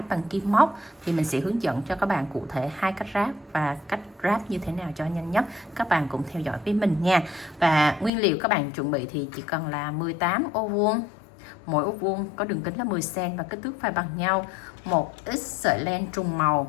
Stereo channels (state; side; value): drops out; right; at 8.1 s